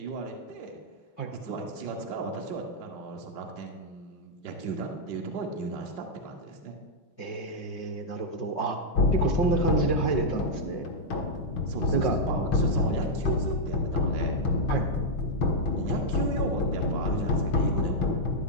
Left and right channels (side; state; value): right; late; 5.5 ms